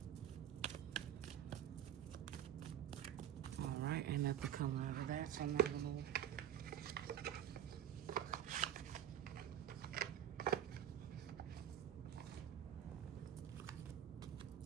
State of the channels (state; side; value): quieter; left; 10.4 dB